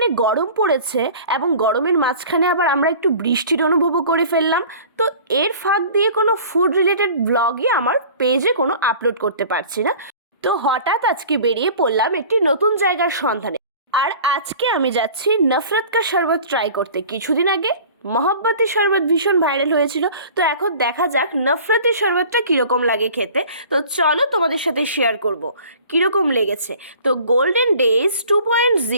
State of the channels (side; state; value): both; inverted; correlation -0.45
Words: গরম পড়েছে এবং গরমের মাঝখানে আবার আমরা একটু বৃষ্টির অনুভবও করে ফেললাম। তো এর ফাঁক দিয়ে কোনো ফুড রিলেটেড ভ্লগই আমার পেজে কোনো আপলোড করতে পারছি না। তো হঠাৎ আজকে বেরিয়ে পড়লাম একটি নতুন জায়গার সন্ধানে। আর আজকে আমি যাচ্ছি নফরত কা শরবত ট্রাই করতে। কিছুদিন আগে মহব্বতী শরবত ভীষণ ভাইরাল হয়েছিল, তো এখন দেখা যাক নফরতি শরবতটা কীরকম লাগে খেতে। তো চলো তোমাদের সাথে শেয়ার করব কীরকম লেগেছে। তো গোল্ডেন ডেজ